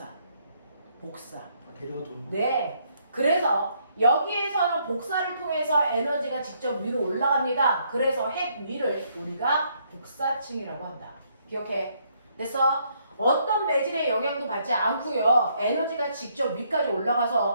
복사. 대류가 돈. 네. 그래서 여기에서는 복사를 통해서 에너지가 직접 위로 올라갑니다. 그래서 핵 위를 우리가 복사층이라고 한다. 기억해. 됐어? 어떤 매질의 영향도 받지 않고요. 에너지가 직접 위까지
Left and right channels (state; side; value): inverted; both; correlation -0.71